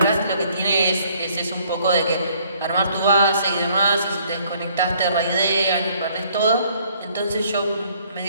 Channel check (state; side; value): inverted; both; correlation -0.62